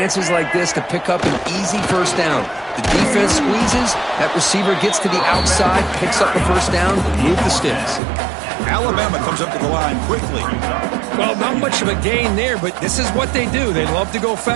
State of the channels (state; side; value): drops out; left; at 8.0 s